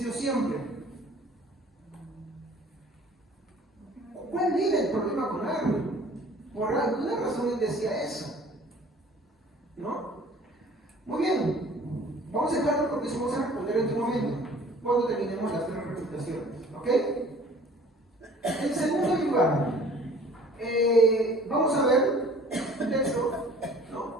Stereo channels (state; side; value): normal; both; correlation 0.51